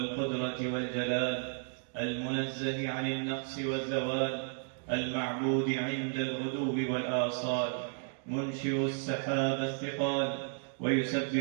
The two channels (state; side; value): silent; left; 56 dB below the other